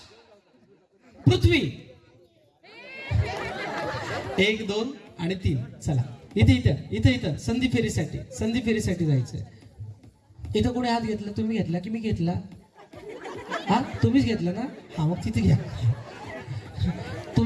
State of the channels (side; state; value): both; identical; correlation 1.00